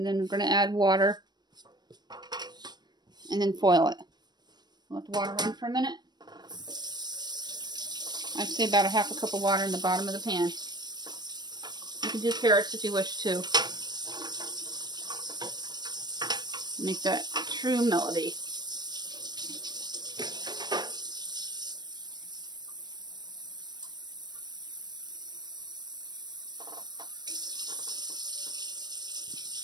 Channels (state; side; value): late; left; 0.20 ms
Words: then we're going to add water and then foil it. Let the water run for a minute. I'd say about a ½ cup of water in the bottom of the pan. You can do carrots if you wish to. Make that true melody.